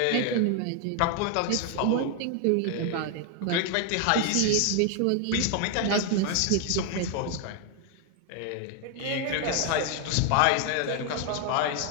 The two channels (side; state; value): both; different; correlation 0.00